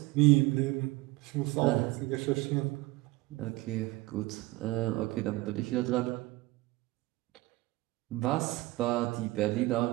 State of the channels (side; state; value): left; quieter; 20.1 dB